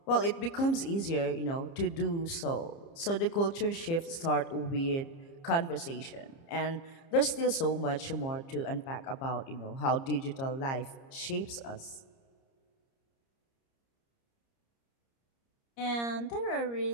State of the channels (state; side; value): late; right; 30 ms